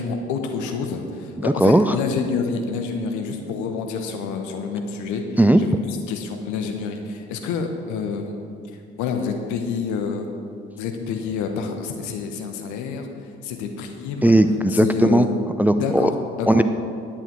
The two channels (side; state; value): both; normal; correlation 0.73